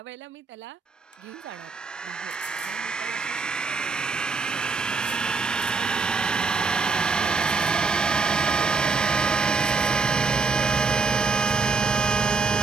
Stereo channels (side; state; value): left; quieter; 4.5 dB